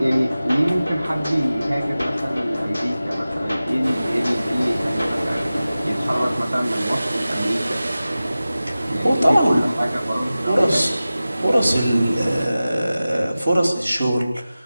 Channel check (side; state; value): both; inverted; correlation -0.96